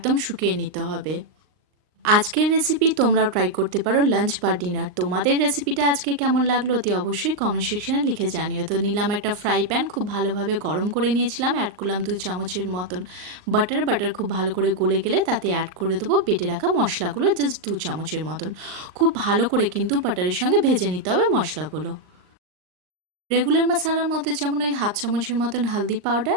শুকিয়ে নিতে হবে। আজকের রেসিপি তোমরাও ট্রাই করতে পারো লাঞ্চ বা ডিনার। তোমাদের রেসিপিটা আজকে কেমন লাগলো অতি অবশ্যই কমেন্ট সেকশনে লিখে জানিও। তো নিলাম একটা ফ্রাই প্যান, খুব ভালোভাবে গরম করে নিয়েছিলাম। অ্যাড করলাম 2 চামচের মতন বাটার খুব ভালো করে গলে গেলে তাতে অ্যাড করে দেবো বেটে রাখা মশলাগুলো, জাস্ট 2 চামচের মতন। খুব ভালো করে কিন্তু বাটারের সঙ্গে ভেজে নিতে হবে মশলাগুলো। রেগুলার মশলার মধ্যে যেমন ওই হাফ চামচের মতন হলদি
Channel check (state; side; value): late; left; 39 ms